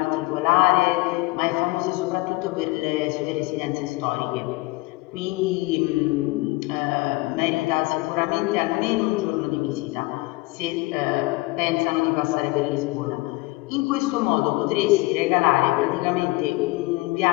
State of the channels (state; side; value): quieter; right; 22.4 dB